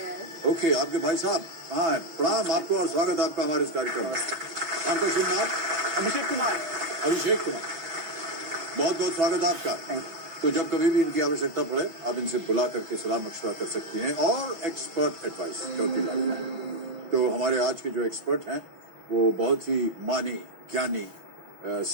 है। ओके, आपके भाई साहब। हाँ, प्रणाम आपको और स्वागत आपका हमारे इस कार्यक्रम में। आपका शुभ नाम? अभिषेक कुमार। अभिषेक कुमार, बहुत बहुत स्वागत आपका। तो जब कभी भी इनकी आवश्यकता पड़े आप इनसे बुला करके सलाह मशवरा कर सकती हैं और एक्सपर्ट एडवाइस चौथी लाइफलाइन। तो हमारे आज के जो एक्सपर्ट हैं वो बहुत ही मानी ज्ञानी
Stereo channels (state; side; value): late; left; 6.1 ms